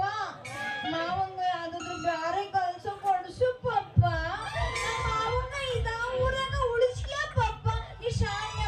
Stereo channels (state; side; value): identical; both; correlation 1.00